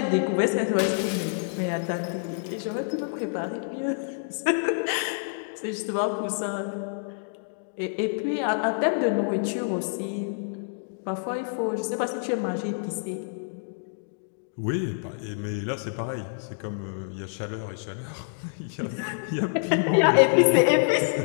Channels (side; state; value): right; silent; digital silence